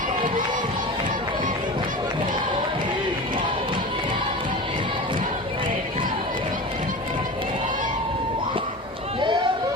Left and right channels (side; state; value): both; normal; correlation 0.31